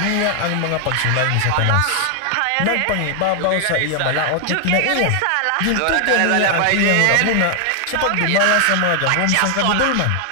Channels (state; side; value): different; both; correlation 0.00